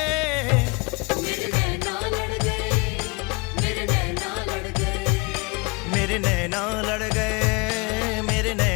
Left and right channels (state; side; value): quieter; right; 28.6 dB